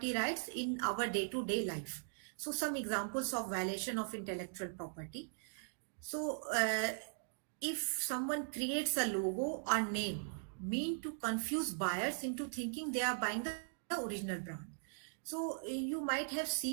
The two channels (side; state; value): left; silent; digital silence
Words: rights in our day-to-day life. So some examples of violation of intellectual property. So if someone creates a logo or name mean to confuse buyers into thinking they are buying the original brand. So you might have